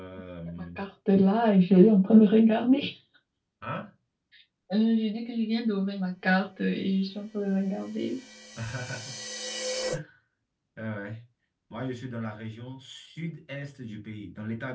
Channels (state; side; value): identical; both; correlation 1.00